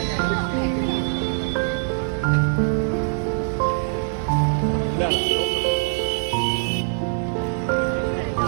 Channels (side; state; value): left; silent; digital silence